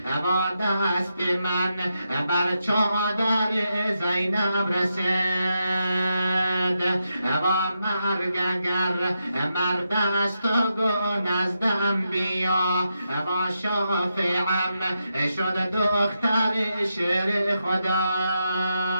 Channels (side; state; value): both; inverted; correlation -0.85